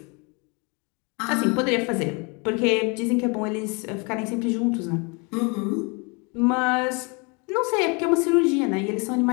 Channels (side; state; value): right; quieter; 31.3 dB